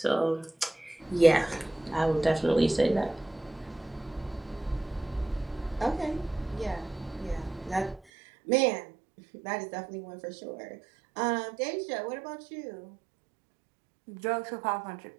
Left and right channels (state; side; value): drops out; left; at 8.0 s